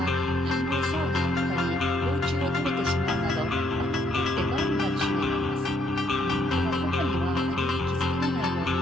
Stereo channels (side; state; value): both; normal; correlation 0.73